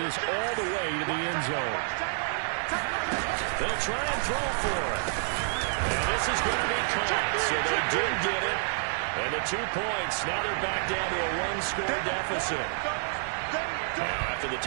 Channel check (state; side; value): silent; left; 59 dB below the other